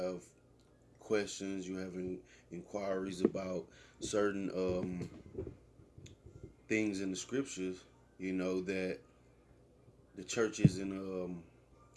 questions, you have inquiries about certain things in the scriptures, that the church isn't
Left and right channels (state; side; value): identical; both; correlation 1.00